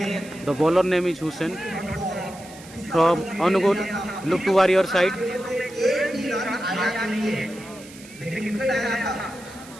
The bowler name is Hussain from Angul. Look to warrior side.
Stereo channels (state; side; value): noise; right; hiss, 19 dB below the sound